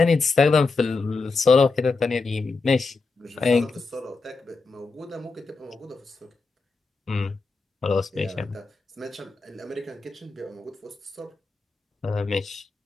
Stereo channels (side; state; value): right; quieter; 4.0 dB